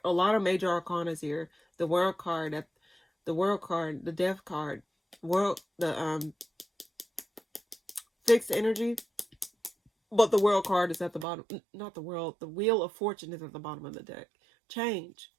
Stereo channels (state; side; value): drops out; left; at 11.2 s